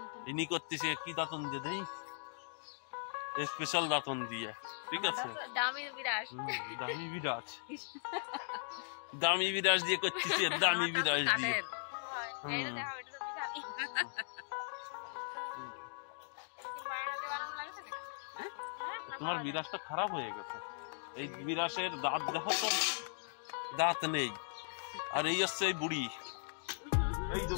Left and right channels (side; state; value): right; silent; digital silence